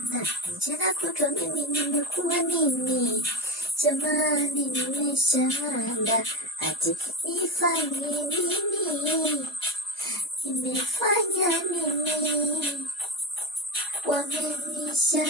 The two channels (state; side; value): normal; both; correlation 0.21